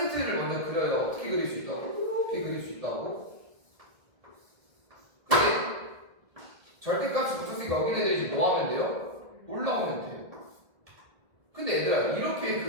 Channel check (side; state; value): left; late; 1.8 ms